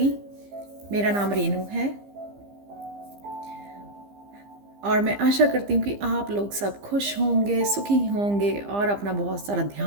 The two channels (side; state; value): left; late; 15 ms